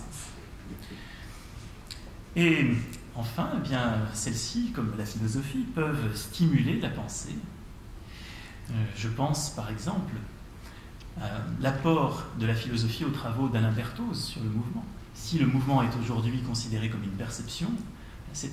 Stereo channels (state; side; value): identical; both; correlation 1.00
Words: Et enfin, eh bien, celles-ci, comme la philosophie, peuvent stimuler la pensée. Je pense, par exemple, à l'apport de la philosophie aux travaux d'Alain Berthoz sur le mouvement. Si le mouvement est aujourd'hui considéré comme une perception,